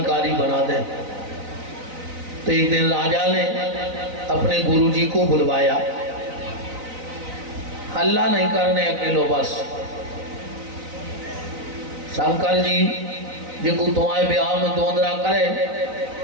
बना दें। तो एक दिन राजा ने अपने गुरुजी को बुलवाया। हल्ला नहीं करने अकेलो, बस शंकर जी जिनको तुम्हारे ब्याह में दोंदरा करे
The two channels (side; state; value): left; late; 4.0 ms